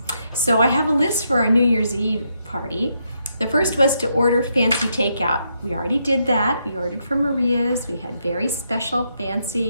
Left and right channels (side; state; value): both; inverted; correlation -0.79